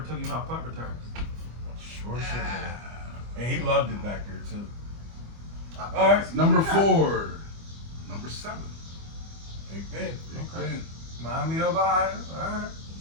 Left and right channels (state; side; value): late; left; 25 ms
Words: took him off punt returns. Sure should have. And he loved it back there too. All right. Number 4. Number 7. Big Ben. Big Okay. Ben. Miami of Ohio. All right.